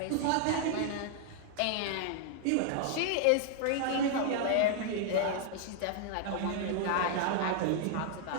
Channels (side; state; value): both; different; correlation 0.00